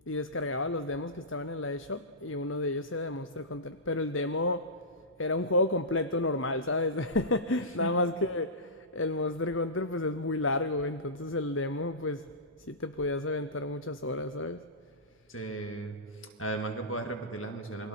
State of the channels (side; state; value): both; normal; correlation -0.18